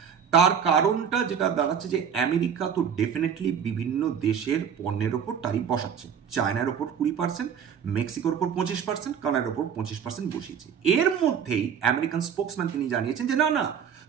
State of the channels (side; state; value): left; quieter; 7.7 dB